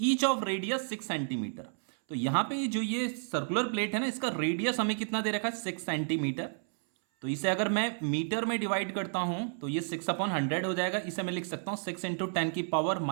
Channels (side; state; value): left; silent; 57 dB below the other